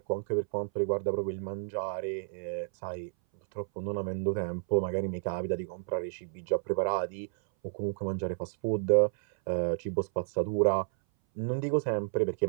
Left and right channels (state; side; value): silent; left; 57 dB below the other